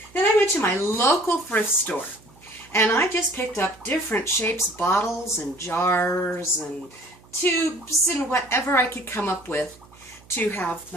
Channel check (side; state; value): right; noise; hum, 26 dB below the sound